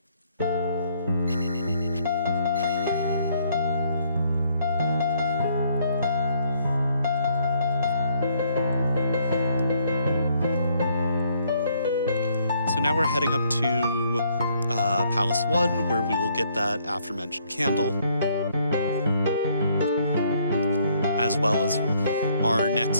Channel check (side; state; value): both; inverted; correlation -0.67